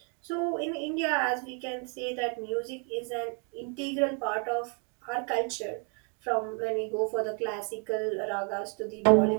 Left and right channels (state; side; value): quieter; left; 38.7 dB